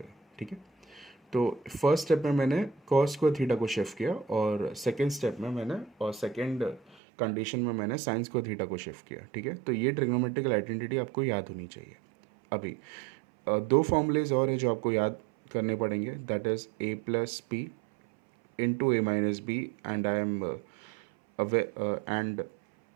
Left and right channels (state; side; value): drops out; left; at 7.0 s